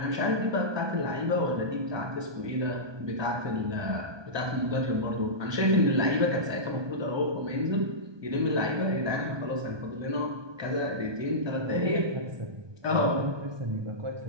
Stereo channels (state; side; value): late; left; 1.2 ms